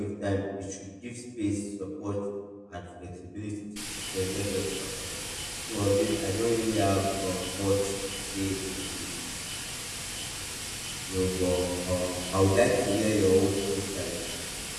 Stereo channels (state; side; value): identical; both; correlation 1.00